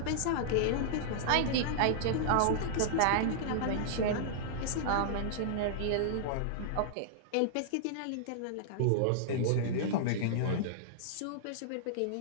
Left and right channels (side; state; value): both; different; correlation -0.02